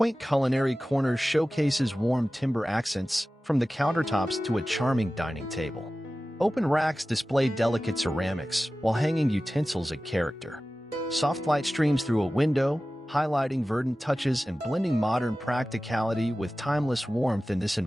culinary corner showcases warm timber accents, from the countertops to a charming dining table. Open racks display delicate ceramics, while hanging utensils add character. Soft light streams through a window, highlighting verdant touches and blending modern practicality with timeless warmth in this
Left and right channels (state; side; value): normal; both; correlation 0.96